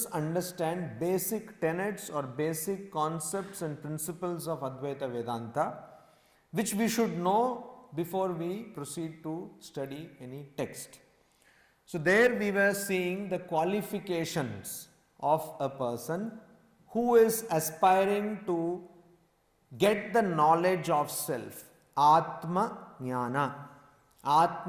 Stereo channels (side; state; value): both; identical; correlation 1.00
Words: understand basic tenets or basic concepts and principles of Advaita Vedanta, which we should know before we proceed to study any text. So there we were seeing the qualifications of a person who is aspiring to get the knowledge of self. Atma Jnana.